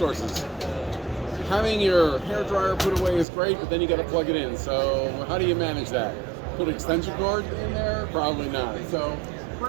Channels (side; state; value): left; drops out; at 3.2 s